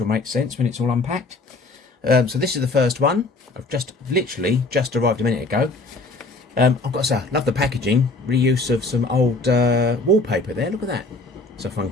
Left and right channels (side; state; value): right; quieter; 3.3 dB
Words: make sense when it's all unpacked. So this is the first one. I've literally just arrived a minute ago. I've got to say, I love the packaging. Reuse of some old wallpaper there. Look at that. It's a